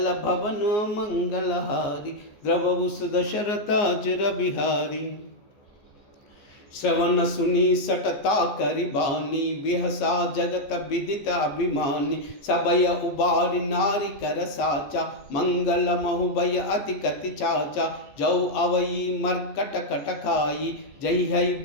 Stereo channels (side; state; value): right; late; 14 ms